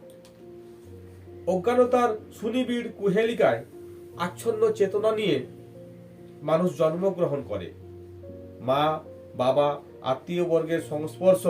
অজ্ঞানতার সুনিবিড় কুহেলিকায় আচ্ছন্ন চেতনা নিয়ে মানুষ জন্মগ্রহণ করে। মা, বাবা, আত্মীয় বর্গের সংস্পর্শ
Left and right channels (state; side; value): identical; both; correlation 1.00